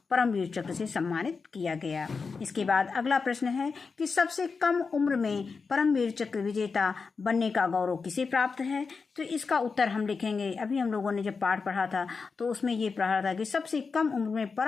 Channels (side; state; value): right; quieter; 4.9 dB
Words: परमवीर चक्र से सम्मानित किया गया। इसके बाद अगला प्रश्न है कि सबसे कम उम्र में परमवीर चक्र विजेता बनने का गौरव किसे प्राप्त है। तो इसका उत्तर हम लिखेंगे, अभी हम लोगों ने जब पाठ पढ़ा था तो उसमें ये पढ़ा था कि सबसे कम उम्र में